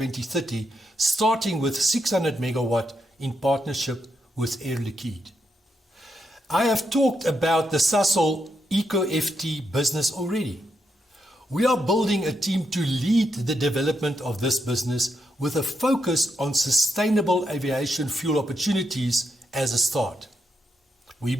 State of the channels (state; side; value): normal; both; correlation 0.81